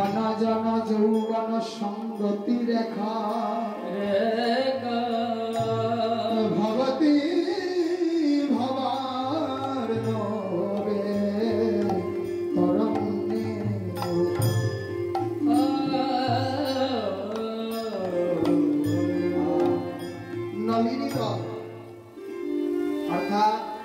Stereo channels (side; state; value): both; identical; correlation 1.00